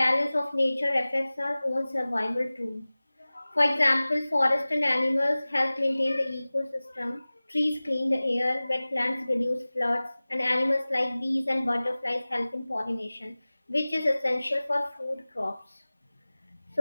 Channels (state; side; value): inverted; both; correlation -0.99